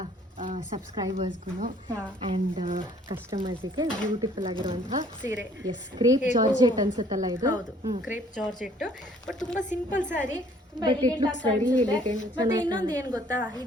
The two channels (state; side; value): normal; both; correlation 0.59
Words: ಸಬ್ಸ್ಕ್ರೈಬರ್ಸ್ಗೂ ಆ್ಯಂಡ್ ಕಸ್ಟಮರ್ಸಿಗೆ ಬ್ಯೂಟಿಫುಲ್ ಆಗಿರುವಂತಹ ಸೀರೆ. ಎಸ್, ಕ್ರೇಪ್ ಜಾರ್ಜೆಟ್ ಅನ್ಸುತ್ತಲ್ಲ ಇದು? ಹೌದು, ಕ್ರೇಪ್ ಜಾರ್ಜೆಟ್. ಬಟ್ ತುಂಬಾ ಸಿಂಪಲ್ ಸ್ಯಾರಿ, ತುಂಬಾ But it looks very elegant. ಮತ್ತೆ ಇನ್ನೊಂದು ಏನ್ ಗೊತ್ತಾ,